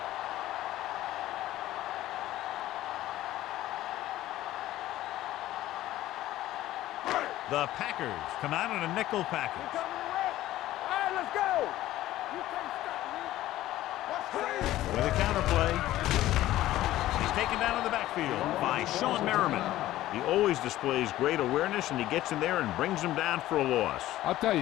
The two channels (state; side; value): quieter; right; 14.9 dB